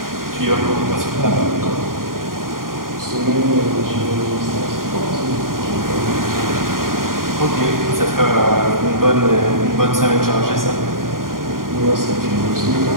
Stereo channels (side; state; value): left; late; 0.91 ms